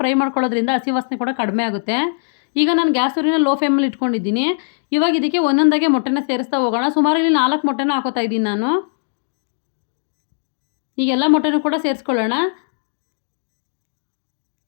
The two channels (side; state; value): right; silent; digital silence